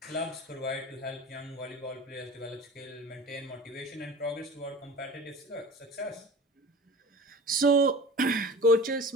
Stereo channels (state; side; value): normal; both; correlation 0.38